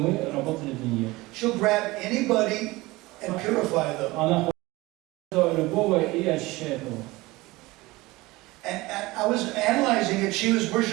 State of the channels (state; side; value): quieter; left; 20.8 dB